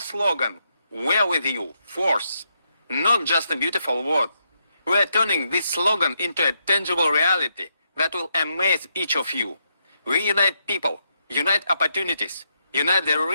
slogan, "We're with you, force," not just a beautiful word. We are turning this slogan into a tangible reality that will amaze each of you. We unite people, unite opportunities, unite the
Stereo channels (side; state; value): both; inverted; correlation -0.79